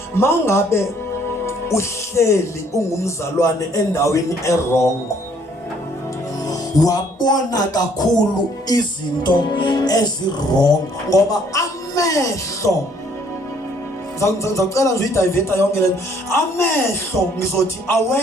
mangabe uhleli ungumzalwane endaweni erongo wabona kakhulu izinto ezirong ngoba amehlo ngicela nje idiveta yonke lento amehlo ngizothi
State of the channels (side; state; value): both; normal; correlation 0.63